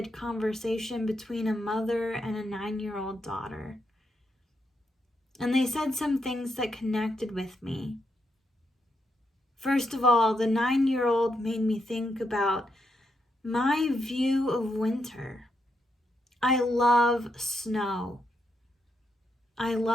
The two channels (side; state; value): both; normal; correlation 0.81